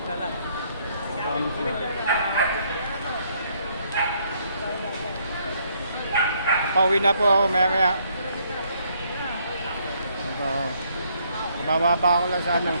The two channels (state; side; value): inverted; both; correlation -0.69